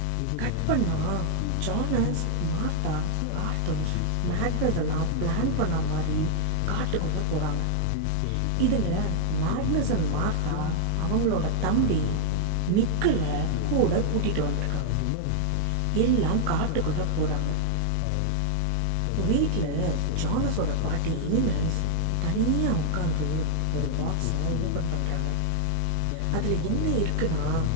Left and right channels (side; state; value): both; different; correlation 0.00